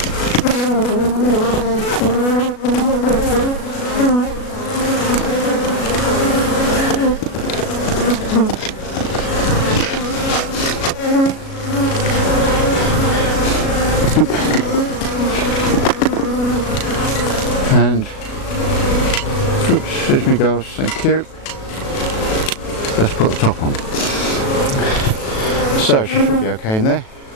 And oops, there's me goes, thank you. Let's put the top on. So she should be okay in there.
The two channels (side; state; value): right; late; 37 ms